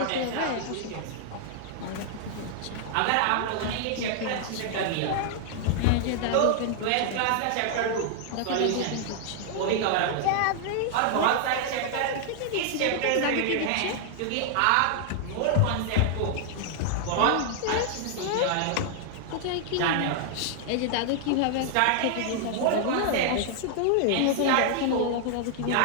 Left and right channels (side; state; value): both; different; correlation 0.00